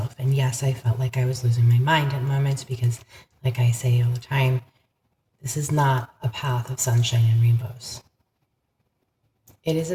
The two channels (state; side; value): identical; both; correlation 1.00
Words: And yes, I felt like I was losing my mind at moments because, like I say all the time, this is not a path of sunshine and rainbows. It is a